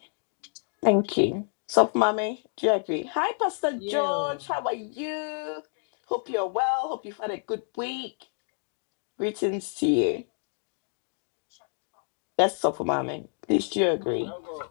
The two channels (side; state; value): right; silent; 55 dB below the other